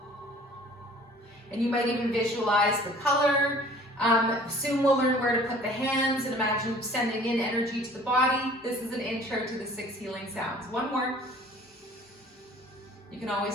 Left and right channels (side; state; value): both; normal; correlation 0.50